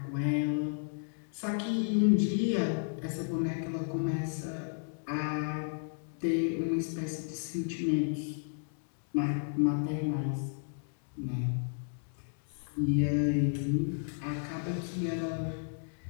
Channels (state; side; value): silent; right; digital silence